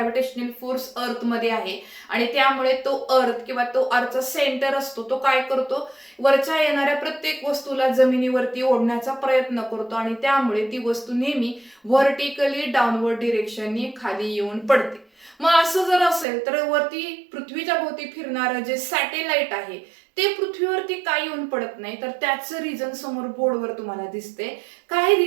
फोर्स अर्थ मध्ये आहे आणि त्यामुळे तो अर्थ किंवा तो अर्थचा सेंटर असतो तो काय करतो वरच्या येणाऱ्या प्रत्येक वस्तूला जमिनीवरती ओढण्याचा प्रयत्न करतो आणि त्यामुळे ती वस्तू नेहमी व्हर्टिकली डाऊनवर्ड डिरेक्शननी खाली येऊन पडते. मग असं जर असेल तर वरती पृथ्वीच्या भोवती फिरणारं जे सॅटेलाइट आहे ते पृथ्वीवरती का येऊन पडत नाही तर त्याचं रिझन समोर बोर्डवर तुम्हाला दिसते. काय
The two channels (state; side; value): drops out; left; at 16.2 s